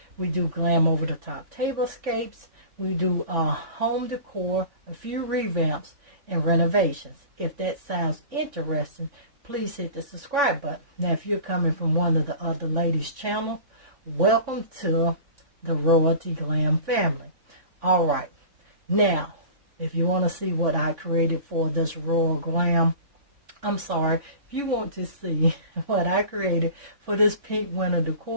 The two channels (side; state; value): left; late; 3.5 ms